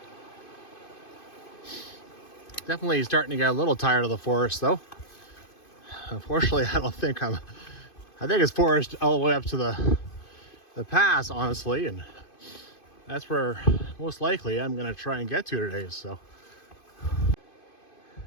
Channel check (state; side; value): late; right; 2.5 ms